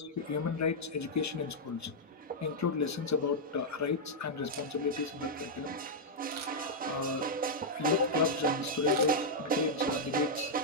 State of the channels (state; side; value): normal; both; correlation -0.05